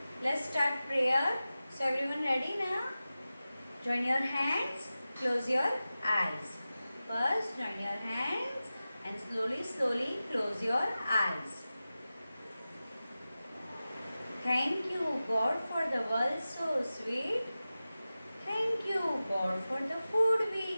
let's start prayer. So everyone ready now? Join your hands, close your eyes. First join your hands and slowly close your eyes. Thank you God for the world so sweet. Thank you God for the food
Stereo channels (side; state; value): both; inverted; correlation -0.95